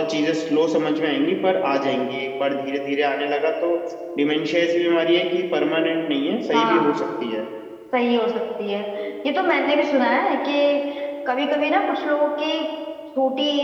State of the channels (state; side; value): identical; both; correlation 1.00